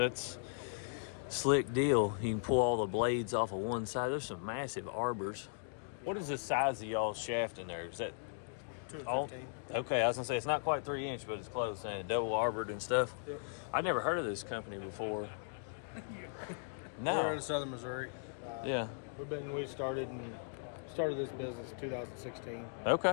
slick deal. You can pull all the blades off of one side. There's some massive arbors. What is the size of y'all's shaft in there? Is that 215. Okay, I was gonna say it's not quite 3 inch, but it's close, and double arbored and stuff. Yep. I'd never heard of this company before. No. We're in southern Missouri. Yeah. We started this business in 2016.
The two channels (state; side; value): silent; right; digital silence